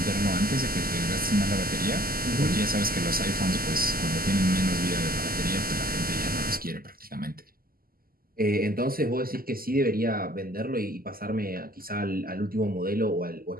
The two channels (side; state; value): left; late; 0.42 ms